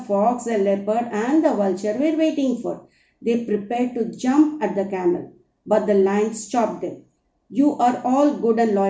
fox, the leopard, and the vulture were waiting for. They prepared to jump at the camel, but the lion stopped them. You are all good and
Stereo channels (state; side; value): identical; both; correlation 1.00